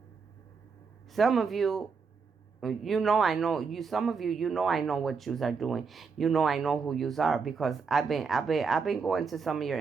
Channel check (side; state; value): left; quieter; 5.3 dB